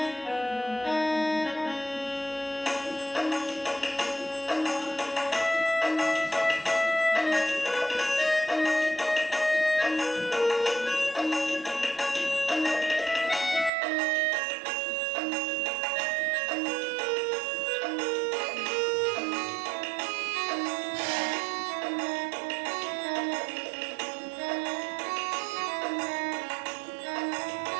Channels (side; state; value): left; drops out; at 13.7 s